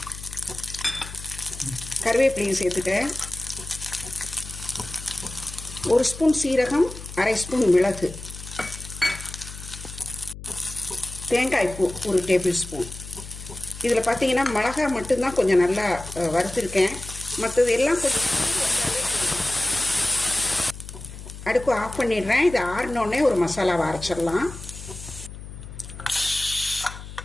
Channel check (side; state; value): left; noise; hum, 13 dB below the sound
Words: கருவேப்பிலையும் சேர்த்துட்டேன். 1 ஸ்பூன் சீரகம், 1/2 ஸ்பூன் மிளகு, தேங்காய் பூ ஒரு டேபிள் ஸ்பூன். இதில் பார்த்தீங்கன்னா மிளகாய் மட்டும்தான் கொஞ்சம் நல்லா வறுத்துருக்கேன். மற்றது எல்லாம் கொஞ்சம் அடுப்பு ஆஃப் பண்ணிடுறேன். இது ஆறினோடனே ஒரு மசாலாவை அரைச்சிடலாம்.